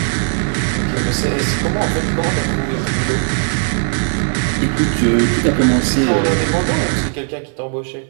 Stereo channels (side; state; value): left; silent; 57 dB below the other